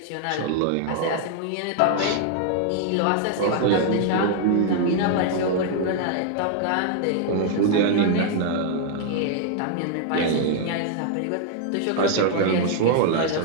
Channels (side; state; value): both; different; correlation 0.00